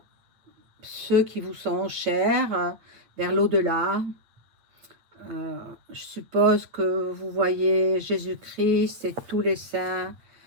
ceux qui vous sont chers, vers l'au-delà. Je suppose que vous voyez Jésus-Christ et tous les saints,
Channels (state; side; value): late; left; 8.8 ms